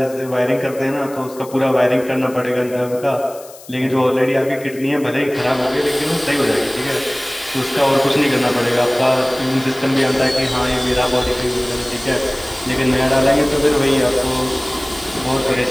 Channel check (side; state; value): left; noise; hiss, 20 dB below the sound